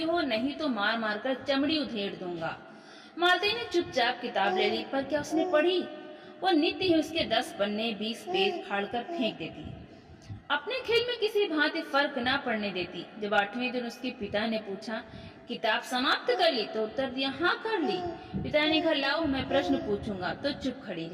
हो, नहीं तो मार मार कर चमड़ी उधेड़ दूंगा। मालती ने चुपचाप किताब ले ली, पर क्या उसने पढ़ी? वो नित्य ही उसके 10 पन्ने 20 पेज फाड़ कर फेंक देती, अपने खेल में किसी भांति फर्क ना पड़ने देती। जब 8वें दिन उसके पिता ने पूछा, किताब समाप्त कर ली? तो उत्तर दिया, हाँ कर ली। पिता ने कहा, लाओ मैं प्रश्न पूछूंगा। तो चुप खड़ी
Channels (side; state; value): both; identical; correlation 1.00